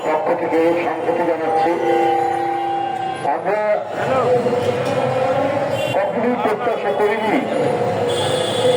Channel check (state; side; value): identical; both; correlation 1.00